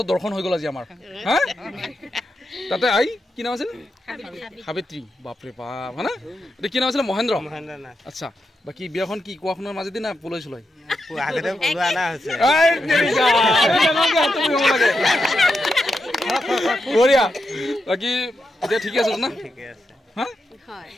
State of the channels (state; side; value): normal; both; correlation 0.86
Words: দৰ্শন হৈ গ'ল আজি আমাৰ হা তাতে আই কি নাম আছিল সাবিত্ৰী বাপৰে বাপ হয় না এতিয়া কি নাম আছিলে মহেন্দ্ৰ আচ্ছা বাকী বিয়াখন কি কোৱাখনৰ মাজেদি না পলাই চলাই বঢ়িয়া বাকী এতিয়া ঠিকে আছে না